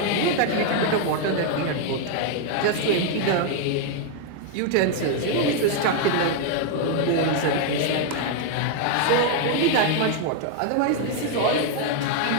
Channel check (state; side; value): different; both; correlation 0.00